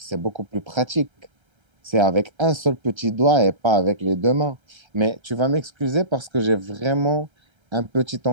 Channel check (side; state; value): left; late; 1.3 ms